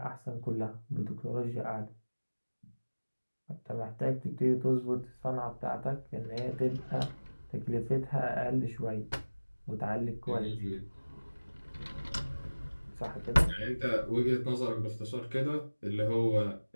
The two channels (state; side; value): inverted; both; correlation -1.00